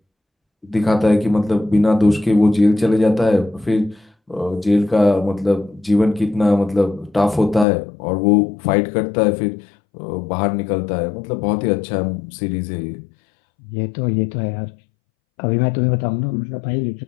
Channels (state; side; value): drops out; right; at 7.7 s